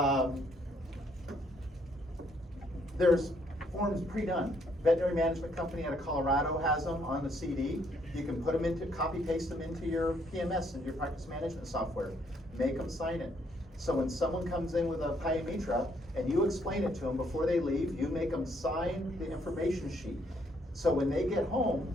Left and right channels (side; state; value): both; normal; correlation 0.69